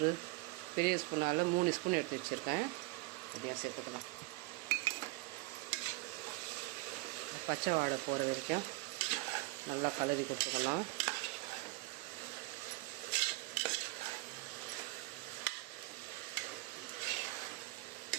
பெரிய ஸ்பூனால் 3 ஸ்பூன் எடுத்து வச்சுருக்கேன். அப்படியே சேர்த்துக்கலாம். பச்சை வாடை போகிற வரைக்கும் நல்லா கலரி கொடுத்துக்கலாம்.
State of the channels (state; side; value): quieter; left; 23.3 dB